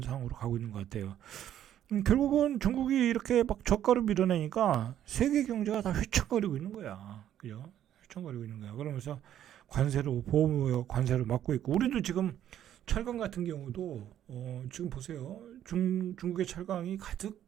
가고 있는 것 같아요. 결국은 중국이 이렇게 막 저가를 밀어내니까 세계 경제가 다 휘청거리고 있는 거야. 그죠? 휘청거리고 있는 거야. 그러면서 보호무역 관세를 막고 있고, 우리도 지금 철강 같은 경우도, 지금 보세요. 중국의 철강이 가득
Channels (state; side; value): quieter; left; 11.0 dB